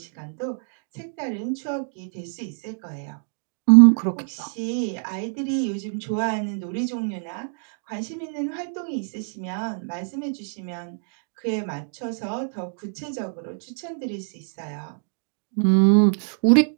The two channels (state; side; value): silent; left; digital silence